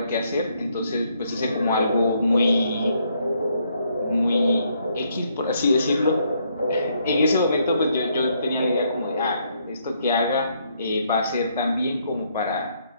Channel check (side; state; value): both; inverted; correlation -0.72